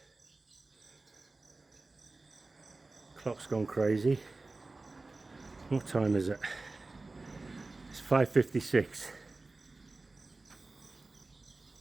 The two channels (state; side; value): quieter; left; 3.4 dB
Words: clock's gone crazy. What time is it? It's 5:56.